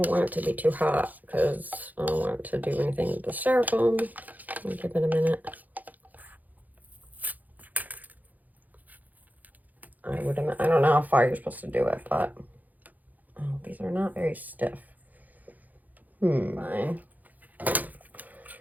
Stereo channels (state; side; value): late; left; 0.081 ms